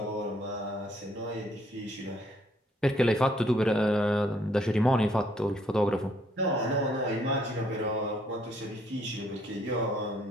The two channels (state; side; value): normal; both; correlation 0.67